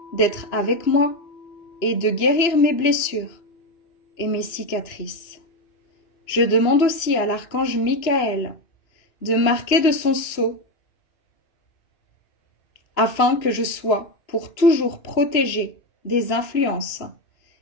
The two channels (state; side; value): late; right; 2.6 ms